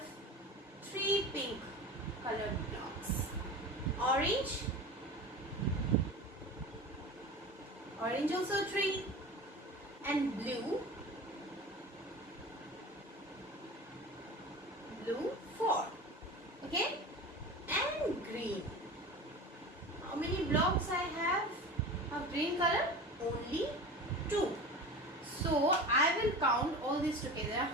3 pink color blocks. Orange. Orange also 3. And blue. Blue 4. Okay. And green. How many blocks I have of green color? Only 2. So I will count all this together.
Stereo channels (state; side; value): normal; both; correlation 0.33